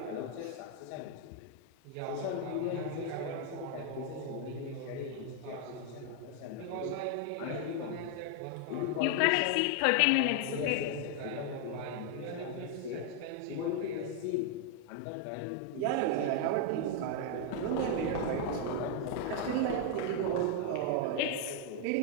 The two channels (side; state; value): both; different; correlation 0.00